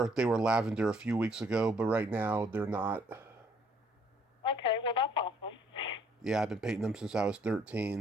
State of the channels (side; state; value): both; normal; correlation 0.64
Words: lavender a few weeks ago, but right now they're not. Okay, well, that's awesome. Yeah, I've been painting them since I was